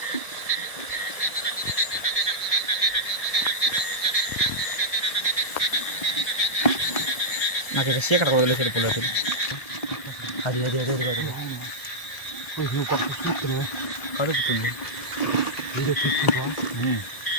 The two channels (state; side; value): late; right; 1.4 ms